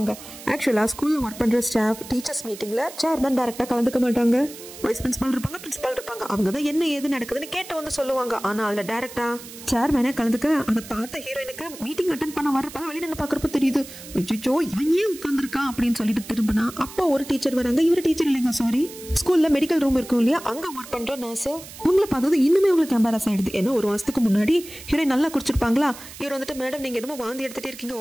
ஆக்சுவலா ஸ்கூல்ல ஒர்க் பண்ற ஸ்டாஃப் டீச்சர்ஸ் மீட்டிங்ல சேர்மன் டைரக்டா கலந்துக்க மாட்டாங்க. வைஸ் பிரின்சிபல் இருப்பாங்க, பிரின்சிபல் இருப்பாங்க. அவங்க தான் என்ன ஏது நடக்குதுன்னு கேட்டு வந்து சொல்லுவாங்க. ஆனா அதுல டைரக்டா சேர்மேனே கலந்துக்க அதை பார்த்த ஹீரோயினுக்கு மீட்டிங் அட்டென்ட் பண்ண வரப்ப வெளியில என்ன பாக்குறப்ப தெரியுது, ஐயோ இவன் ஏன் உட்கார்ந்துருக்கான் அப்படின்னு சொல்லிட்டு திரும்பினா அப்போ ஒரு டீச்சர் வராங்க. இவரு டீச்சர் இல்லைங்க, சாரி, ஸ்கூல்ல மெடிக்கல் ரூம் இருக்கும் இல்லையா, அங்க ஒர்க் பண்ற நர்ஸ். உங்களை பார்த்தது இன்னுமே உங்களுக்கு எம்பாரஸ் ஆயிடுது. ஏன்னா ஒரு மாசத்துக்கு முன்னாடி ஹீரோயின் நல்லா குடிச்சிருப்பாங்களா, இவர் வந்துட்டு மேடம் நீங்க என்னமோ வாந்தி எடுத்துட்டே இருக்கீங்க,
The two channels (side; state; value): right; noise; hiss, 15 dB below the sound